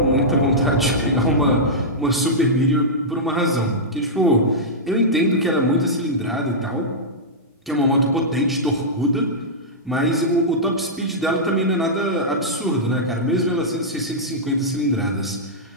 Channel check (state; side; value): normal; both; correlation -0.10